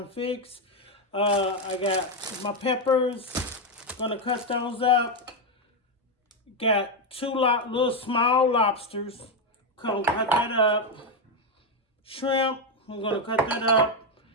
to fix. I got my peppers, gonna cut those up. Got two little small lobsters, gonna cut that up. Shrimp, I'm gonna cut that up.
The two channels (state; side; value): normal; both; correlation 0.05